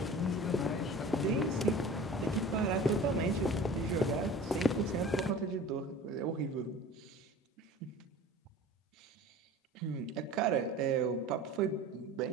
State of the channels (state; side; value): normal; both; correlation 0.40